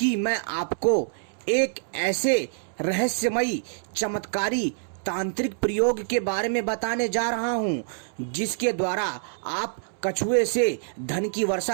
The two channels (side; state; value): left; silent; 61 dB below the other